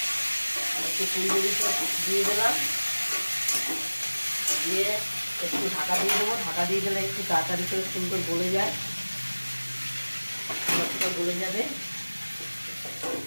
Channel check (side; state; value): both; inverted; correlation -1.00